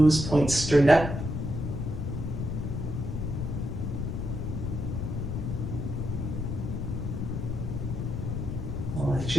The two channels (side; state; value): left; noise; rumble, 3 dB below the sound